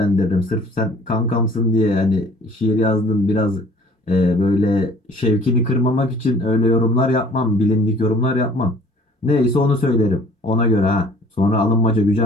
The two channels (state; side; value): normal; both; correlation 0.53